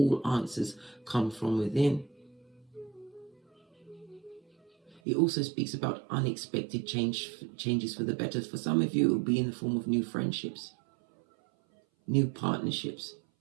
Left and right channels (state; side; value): drops out; left; at 5.0 s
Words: answers come from within. It also speaks about unexpected changes for the better. For some of you, it will be in the form of new friendships, new partnerships.